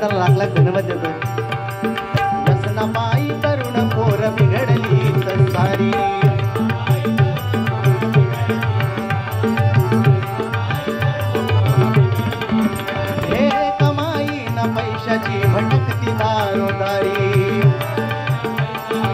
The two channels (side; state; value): both; identical; correlation 1.00